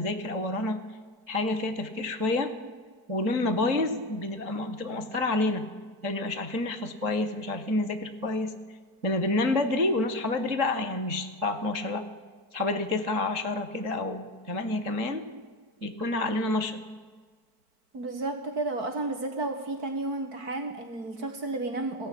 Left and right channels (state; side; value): late; left; 4.5 ms